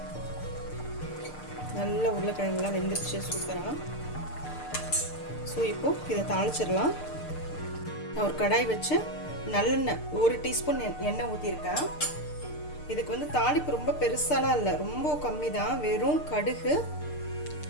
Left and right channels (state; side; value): late; right; 6.6 ms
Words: நல்ல உருளைக்கிழங்குலாம் வெந்துருச்சு சூப்பராக. ஸோ இப்போது இதை தாளிச்சிடலாம். நான் ஒரு கடாய் வச்சு நல்லெண்ணெய் 1 டீஸ்பூன் எண்ணெய் ஊற்றிருக்கேன். இதுக்கு வந்து தாளிப்பு ரொம்ப பெருசாலாம் இல்லை, ரொம்ப கம்மி தான். வெறும் கடுகு,